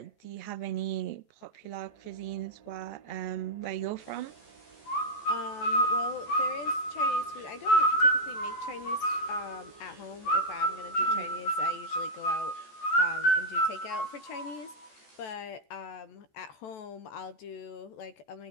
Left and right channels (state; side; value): late; right; 14 ms